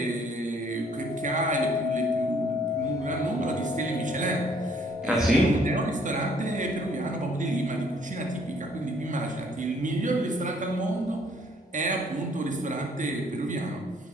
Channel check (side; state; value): both; normal; correlation 0.63